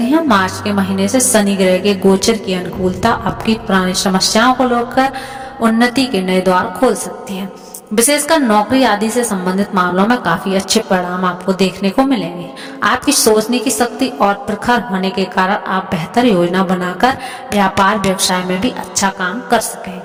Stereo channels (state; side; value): identical; both; correlation 1.00